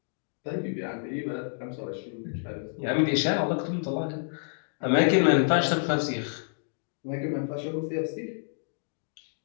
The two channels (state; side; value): silent; right; digital silence